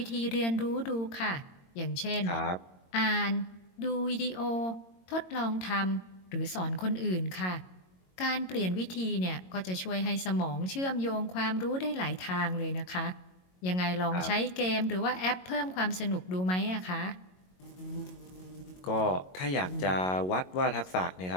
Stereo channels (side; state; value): right; late; 22 ms